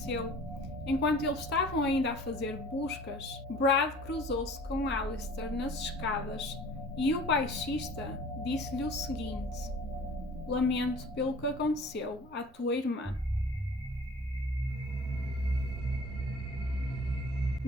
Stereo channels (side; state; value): both; normal; correlation 0.47